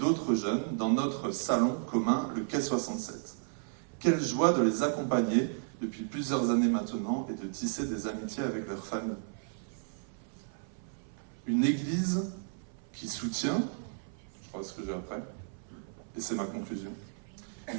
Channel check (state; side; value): silent; left; 55 dB below the other